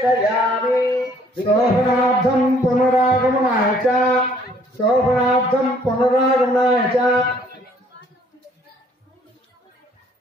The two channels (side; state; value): both; normal; correlation 0.61